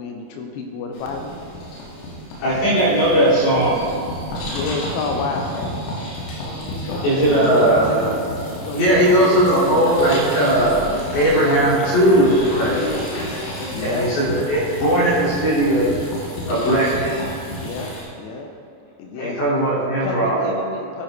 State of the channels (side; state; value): right; late; 28 ms